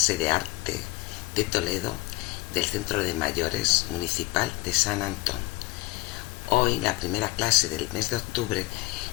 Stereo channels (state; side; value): quieter; right; 20.7 dB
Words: de arte de Toledo del Centro de Mayores Municipal de San Antón. Hoy, la primera clase del mes de octubre